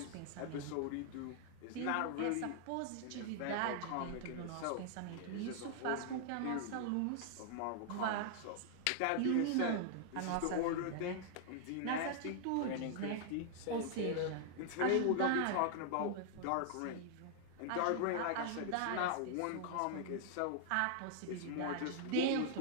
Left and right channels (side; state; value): both; different; correlation -0.01